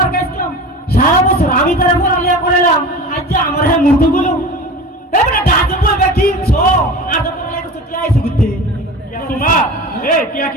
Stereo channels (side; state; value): both; normal; correlation 0.34